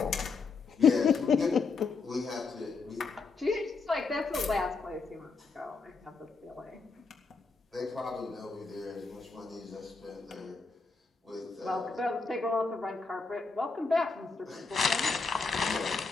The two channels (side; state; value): right; quieter; 4.4 dB